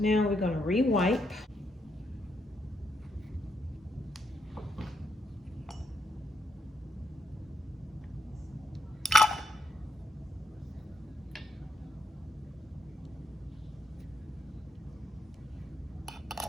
we're going to re-wipe.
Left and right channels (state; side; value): normal; both; correlation 0.78